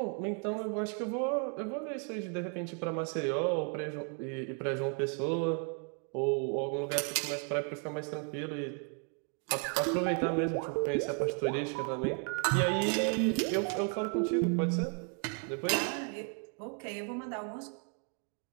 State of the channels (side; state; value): left; quieter; 39.4 dB